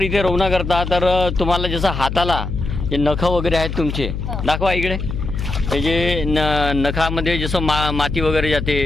इथे रवना करता तर तुम्हाला जसं हाताला जे नखं वगैरे आहेत तुमचे दाखवा इकडे. हे जे नखामध्ये जसं माती वगैरे जाते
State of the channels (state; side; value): noise; left; hum, 5 dB below the sound